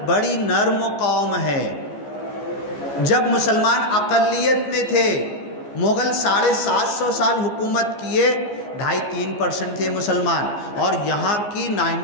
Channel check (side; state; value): right; late; 14 ms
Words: بڑی نرم قوم ہے۔ جب مسلمان اقلیت میں تھے، مغل 750 سال حکومت کیے، 2.5-3% تھے مسلمان، اور یہاں کی